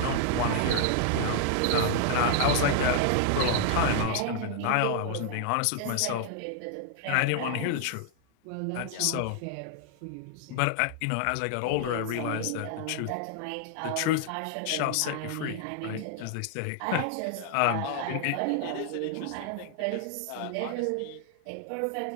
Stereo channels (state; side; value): different; both; correlation 0.00